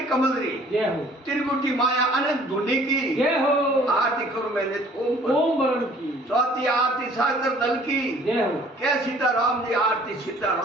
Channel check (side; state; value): both; normal; correlation 0.54